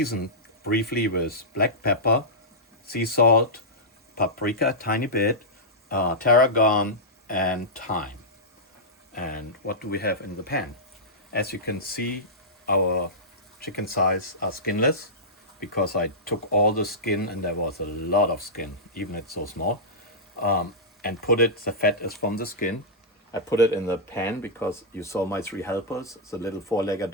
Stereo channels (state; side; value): normal; both; correlation -0.13